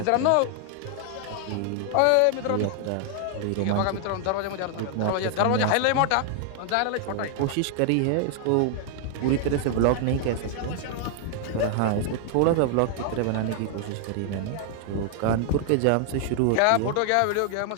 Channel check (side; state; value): both; different; correlation 0.00